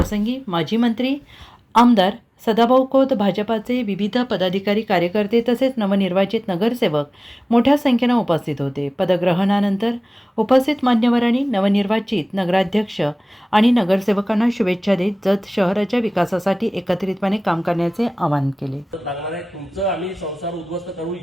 माजी मंत्री आमदार सदाभाऊ खोत, भाजपाचे विविध पदाधिकारी, कार्यकर्ते तसेच नवनिर्वाचित नगरसेवक मोठ्या संख्येने उपस्थित होते. पदग्रहणानंतर उपस्थित मान्यवरांनी नवनिर्वाचित नगराध्यक्ष आणि नगरसेवकांना शुभेच्छा देत जत शहराच्या विकासासाठी एकत्रितपणे काम करण्याचे आवाहन केले. तुमचं आम्ही संसार उद्ध्वस्त करू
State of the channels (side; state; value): both; normal; correlation 0.98